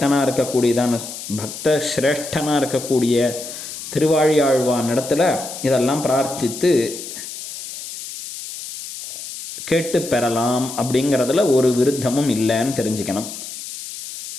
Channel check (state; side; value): noise; left; hiss, 10 dB below the sound